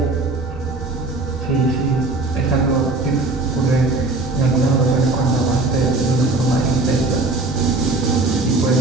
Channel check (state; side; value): quieter; left; 3.3 dB